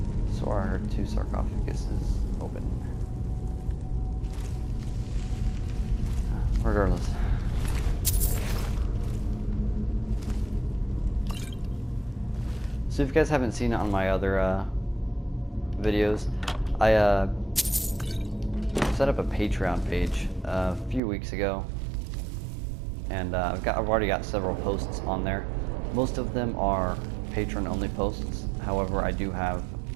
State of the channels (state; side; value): drops out; left; at 21.0 s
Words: So I heard two sarcophaguses open. Regardless. So if you guys haven't seen it on my other videos, I set up a Patreon page a few weeks ago, and I've already got several posts on there. Most of them are patron-only posts. However, I do have